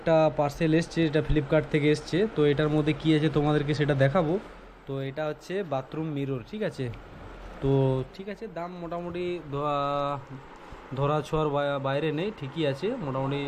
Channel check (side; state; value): both; identical; correlation 1.00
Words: পার্সেল এসছে, এটা ফ্লিপকার্ট থেকে এসছে। তো এটার মধ্যে কি আছে তোমাদেরকে সেটা দেখাবো। তো এটা হচ্ছে বাথরুম মিরর, ঠিক আছে? তো ঠিক আছে, দাম মোটামুটি ধরা ছোঁয়ার বাইরে নেই, ঠিকই আছে মোটামুটি,